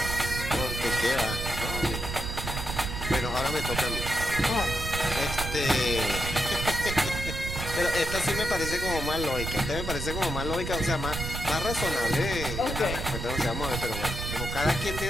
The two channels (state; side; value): noise; right; rumble, 5 dB below the sound